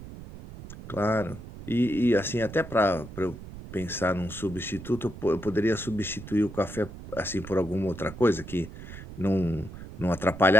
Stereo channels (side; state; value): right; noise; rumble, 13 dB below the sound